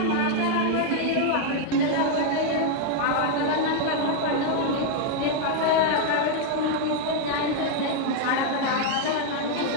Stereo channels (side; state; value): both; different; correlation 0.00